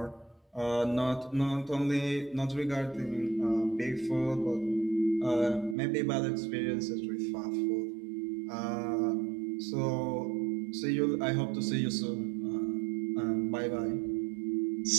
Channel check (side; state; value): left; drops out; at 5.8 s